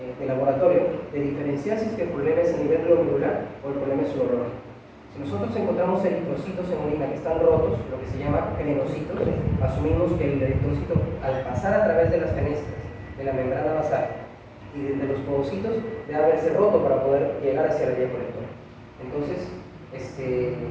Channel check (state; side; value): identical; both; correlation 1.00